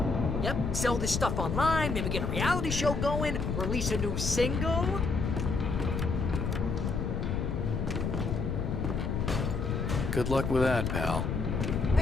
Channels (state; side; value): noise; left; rumble, 1 dB below the sound